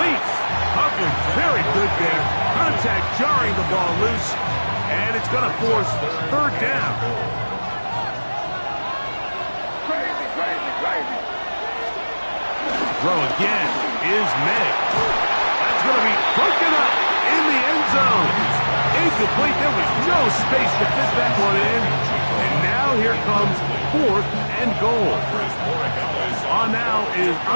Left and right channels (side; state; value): both; inverted; correlation -1.00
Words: Coverage very good there. Contact jarring the ball loose, and it's going to force third down. Throw again is May. That's going to be broken up in the end zone. Incomplete. There was no space to fit that one in. And now here comes fourth and goal. On now is